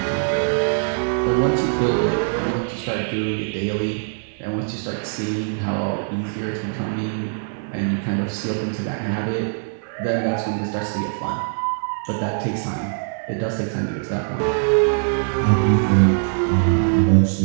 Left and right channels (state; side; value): silent; left; digital silence